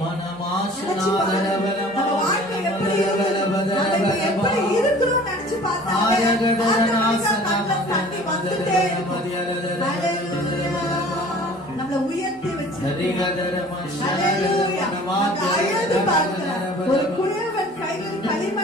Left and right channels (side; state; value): both; normal; correlation 0.47